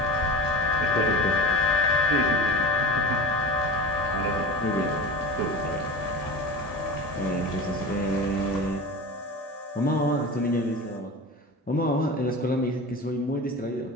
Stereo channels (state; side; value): normal; both; correlation 0.31